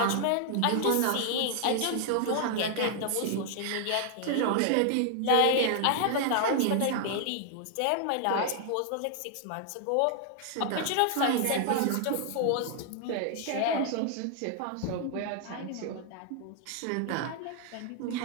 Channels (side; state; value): both; different; correlation 0.00